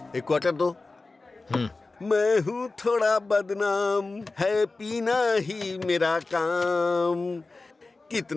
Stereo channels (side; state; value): right; quieter; 3.5 dB